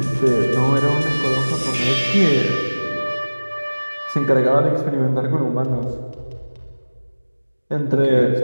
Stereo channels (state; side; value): inverted; both; correlation -1.00